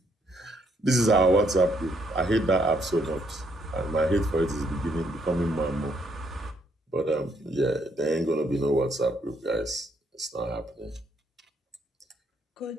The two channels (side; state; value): both; normal; correlation 0.72